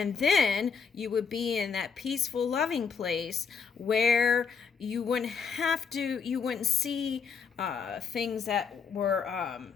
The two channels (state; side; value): quieter; right; 6.0 dB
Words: then you would be in that peaceful, loving place where you wouldn't see things that were,